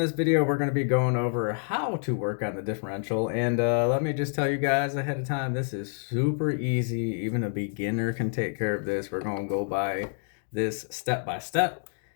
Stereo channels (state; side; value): silent; right; digital silence